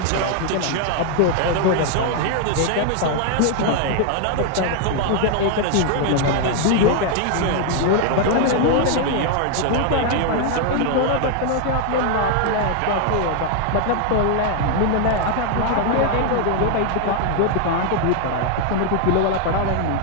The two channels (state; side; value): different; both; correlation 0.00